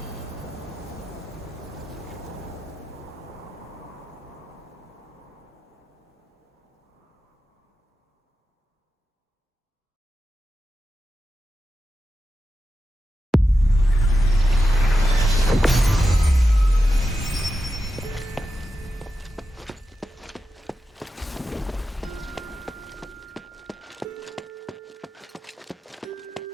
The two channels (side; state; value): both; normal; correlation 0.90